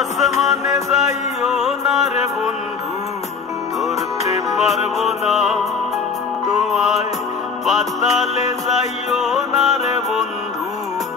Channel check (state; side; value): quieter; right; 5.6 dB